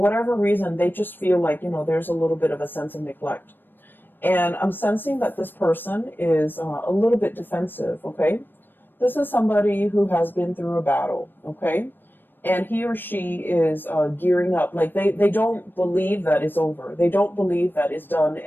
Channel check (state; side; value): late; right; 0.094 ms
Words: reason, they just feel like, there's a little bit of a sense of neglect. And I'm sensing that this person is a little bit defensive, okay? This is somebody who has been through a battle, okay? And he or she is gearing up. Like they don't believe that it's over. They don't believe that it's done